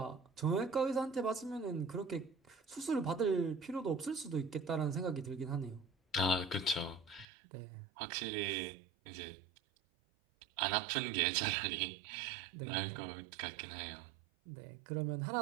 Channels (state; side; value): drops out; left; at 7.2 s